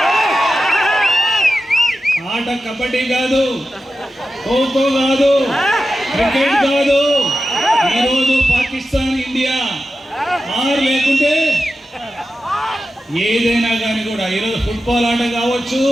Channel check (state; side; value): normal; both; correlation 0.92